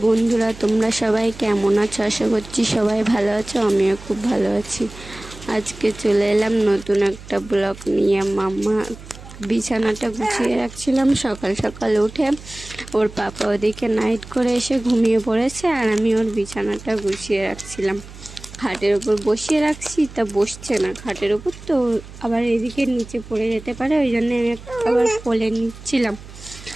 বন্ধুরা, তোমরা সবাই কেমন আছো? আশা করছি সবাই ভালো আছো। আমিও খুব ভালো আছি। আজকে চলে এলাম নতুন একটা ব্লগ নিয়ে। মাম্মা বিছানাটা গুছিয়ে রাখছিলাম। সকাল সকাল উঠে ওর পাপা ওদিকে নাইট করে এসে ঘুমিয়ে পড়েছে, আর আমি ওর বিছানাটা গুছিয়ে রাখছিলাম। খাটের ওপর বসিয়ে রাখছি, তা বসছে না খাটের ওপর, তো আবার এদিকে নিচে পড়ে যেতে পারে, ওই জন্য আমি আবার কোলে নিচ্ছিলাম।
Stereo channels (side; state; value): right; noise; hum, 17 dB below the sound